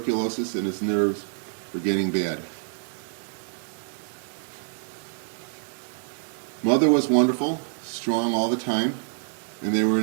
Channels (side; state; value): left; silent; digital silence